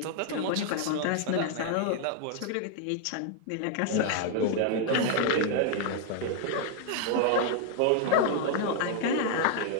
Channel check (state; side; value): different; both; correlation 0.00